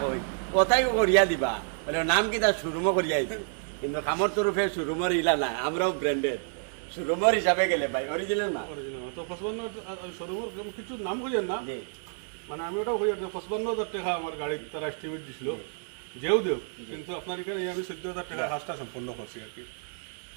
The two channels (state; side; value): silent; left; 58 dB below the other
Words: কোথায় করিয়া দিবা বলে নাম কি তার শোরুমও করিয়া দিতে, কিন্তু কামর তরফে শোরুমের ইলা না, আমরাও ব্র্যান্ডেড শোরুমের হিসাবে গেলে ভাই অরিজিনাল না। তো 55 শোরুমের কিছু নাম কইেন না, জি মানে আমি ওটাও কই 55,000 টাকা আমার গাড়ির তারা এস্টিমেট দিছিল, যেও দেও, কিন্তু আপনার এখানে আমি 14,000 টাকা হাসটা সম্পূর্ণ করছি আর কি।